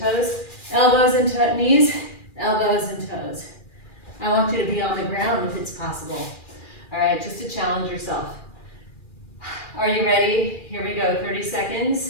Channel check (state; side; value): late; right; 2.4 ms